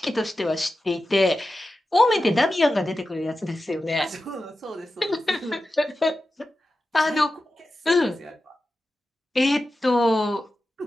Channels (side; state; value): both; normal; correlation 0.93